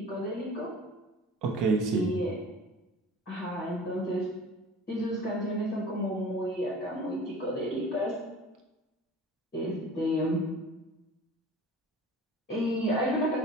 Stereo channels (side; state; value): both; normal; correlation 0.42